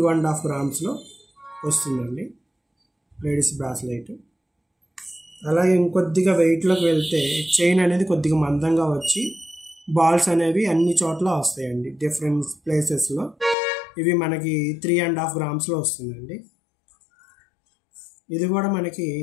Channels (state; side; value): drops out; right; at 13.6 s